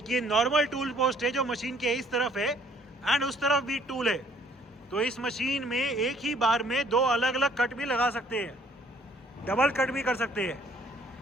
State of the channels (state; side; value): normal; both; correlation 0.61